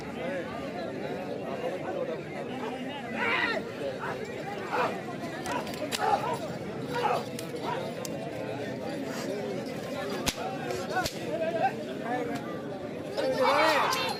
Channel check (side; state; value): both; identical; correlation 1.00